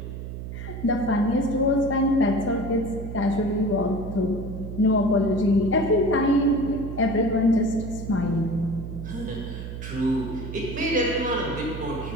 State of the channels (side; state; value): right; noise; hum, 8 dB below the sound